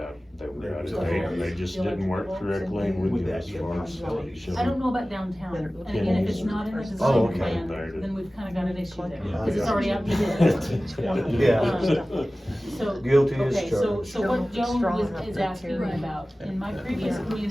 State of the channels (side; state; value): both; normal; correlation 0.97